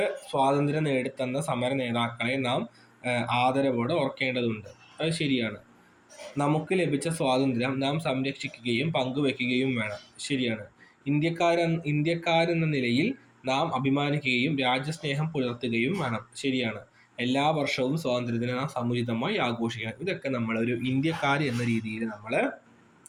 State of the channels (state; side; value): identical; both; correlation 1.00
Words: സ്വാതന്ത്ര്യം നേടിത്തന്ന സമര നേതാക്കളെ നാം ആദരവോടെ ഓർക്കേണ്ടതുണ്ട്. അത് ശരിയാണ്. നമുക്ക് ലഭിച്ച സ്വാതന്ത്ര്യം നാം സംരക്ഷിക്കുകയും പങ്കുവെക്കുകയും വേണം. ശരിയാണ്. ഇന്ത്യക്കാരെന്ന നിലയിൽ നാം അഭിമാനിക്കുകയും രാജ്യസ്നേഹം പുലർത്തുകയും വേണം. ശരിയാണ്. എല്ലാ വർഷവും സ്വാതന്ത്ര്യദിനം നാം സമുചിതമായി ആഘോഷിക്കണം. ഇതൊക്കെ നമ്മളൊരു ഇന്ത്യക്കാർ എന്ന രീതിയിൽ നമ്മൾ